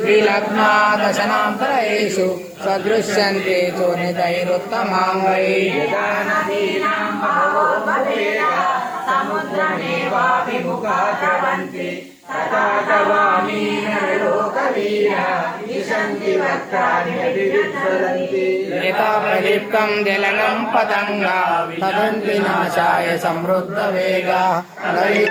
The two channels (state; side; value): identical; both; correlation 1.00